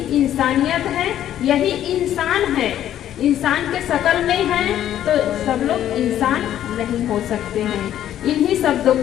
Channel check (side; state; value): right; quieter; 11.4 dB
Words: इंसानियत है, यही इंसान है। इंसान के शकल में है तो सब लोग इंसान नहीं हो सकते हैं। इन्हीं शब्दों